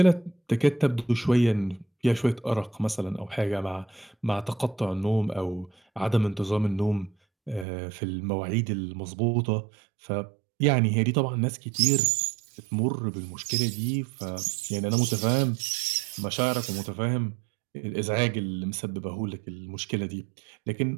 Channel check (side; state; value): left; drops out; at 7.7 s